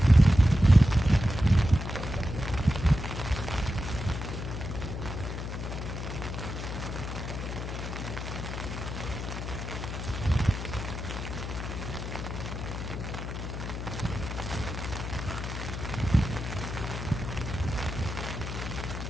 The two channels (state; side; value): noise; left; hum, 5 dB below the sound